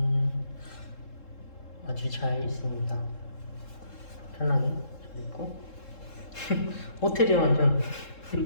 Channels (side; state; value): right; late; 3.7 ms